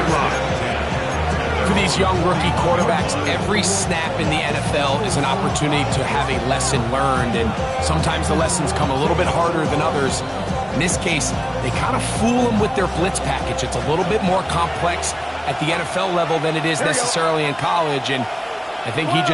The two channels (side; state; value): both; identical; correlation 1.00